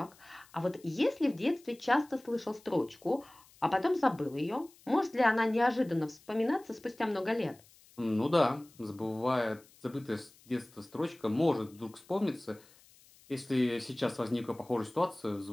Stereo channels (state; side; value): noise; left; hiss, 27 dB below the sound